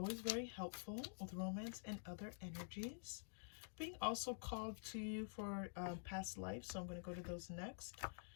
very helpful with romance and other energies. Being also called to you for past life, so I'm going to go to those next.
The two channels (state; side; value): silent; right; digital silence